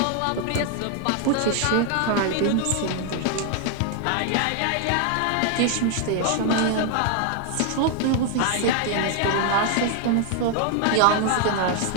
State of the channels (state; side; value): different; both; correlation 0.00